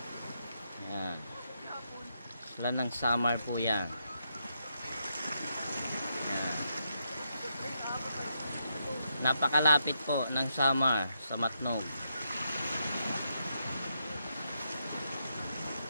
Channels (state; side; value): inverted; both; correlation -0.81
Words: Ayan. Isla ng Samar po yan. Ayan. Napakalapit po ng Samar sa Matnog.